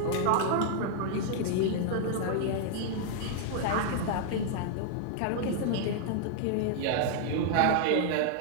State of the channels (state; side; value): different; both; correlation -0.01